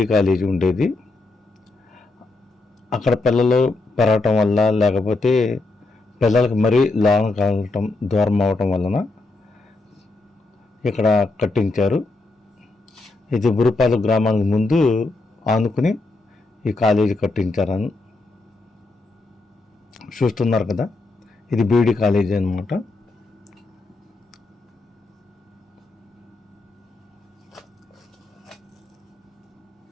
కాలేజీ ఉండేది. అక్కడ పిల్లలు పెరగటం వల్ల, లేకపోతే పిల్లలకు మరీ లోన కావటం, దూరం అవటం వలన ఇక్కడ కట్టించారు. ఇది బురుపాలెం గ్రామానికి ముందు ఆనుకుని ఈ కాలేజీ కట్టించారని చూస్తున్నారు కదా, ఇది బీఈడి కాలేజీ అన్నమాట.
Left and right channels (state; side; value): quieter; right; 3.2 dB